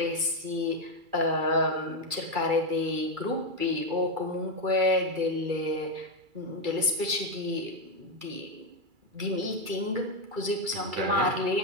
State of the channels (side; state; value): left; late; 2.3 ms